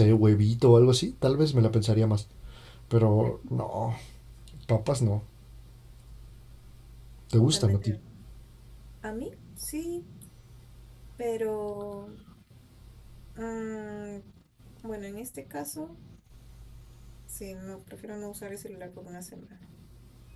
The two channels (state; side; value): identical; both; correlation 1.00